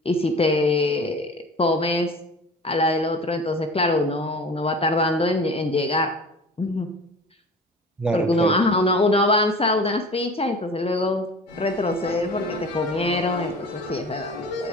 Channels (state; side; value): normal; both; correlation 0.39